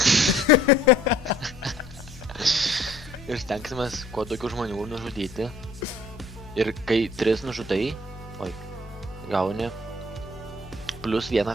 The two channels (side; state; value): both; normal; correlation 0.57